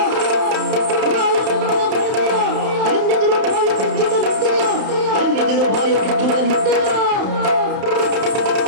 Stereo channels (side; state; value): left; late; 31 ms